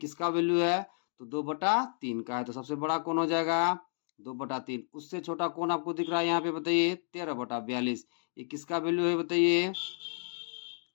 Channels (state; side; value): silent; right; digital silence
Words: वैल्यू है तो 2/3 का है, तो सबसे बड़ा कौन हो जाएगा 2/3। उससे छोटा कौन आपको दिख रहा है यहाँ पे बताइए 13/42। ये किसका वैल्यू है बताइए,